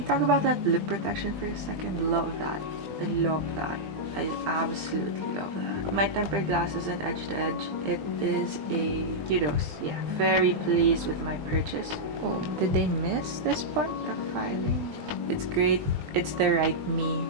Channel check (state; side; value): late; left; 20 ms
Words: talk about that lip protection for a second? Love that. I love that. I absolutely love that. My tempered glass isn't edge to edge. It is a kudos. Yeah, very pleased with my purchase. Oh, did they miss this part of filing? It's great. It's the right me,